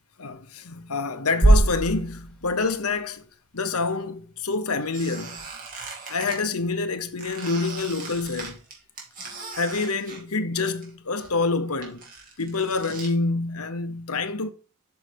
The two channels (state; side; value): normal; both; correlation 0.30